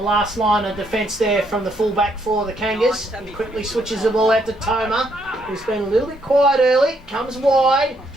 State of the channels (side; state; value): both; normal; correlation 0.72